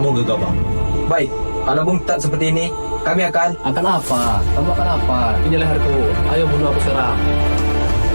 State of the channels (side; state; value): both; inverted; correlation -1.00